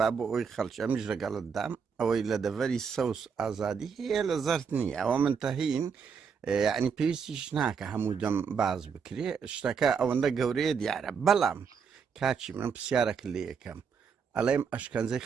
بۆ ئەوی خەڵکی ئەمیش لەگەڵت دام ئەوەی لە دەڤەری سەوس ئازادی هەیە لە زەرد نییە ئەوە منتەهین یعنی پێویستیش ناکە هەموو دەم باز بکرێ شتەکە ئەوەندە گەورەیە دیارە بەڵام کاچی من پرسیارەکە لێ یەکەم ئەڵێم ئەشکەنجەی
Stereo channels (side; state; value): left; quieter; 6.3 dB